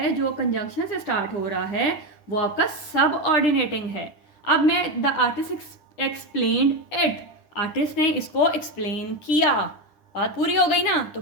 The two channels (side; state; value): right; late; 9.9 ms